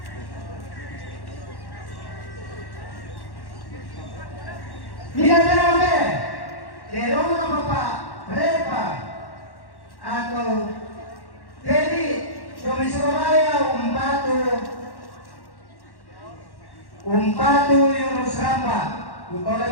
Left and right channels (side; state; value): right; late; 1.1 ms